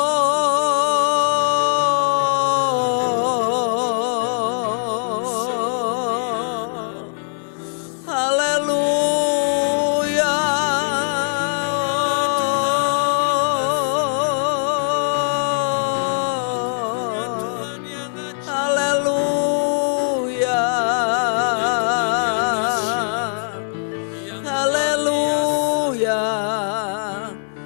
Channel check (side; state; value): right; silent; digital silence